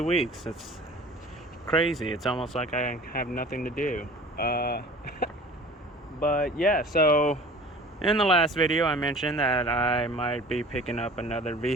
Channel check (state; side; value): normal; both; correlation 0.44